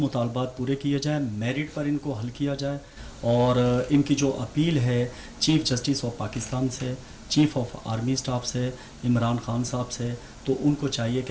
पूरे किए जाएँ, मेरिट पर इनको हल किया जाए, और इनकी जो अपील है चीफ़ जस्टिस ऑफ पाकिस्तान से, चीफ़ ऑफ आर्मी स्टाफ से, इमरान खान साहब से, तो उनको चाहिए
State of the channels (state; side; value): identical; both; correlation 1.00